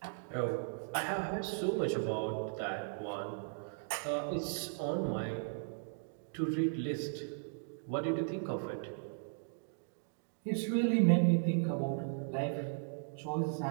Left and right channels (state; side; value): silent; left; digital silence